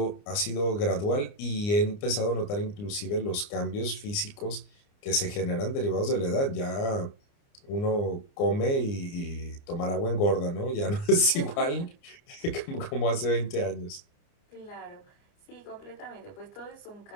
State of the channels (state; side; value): late; right; 29 ms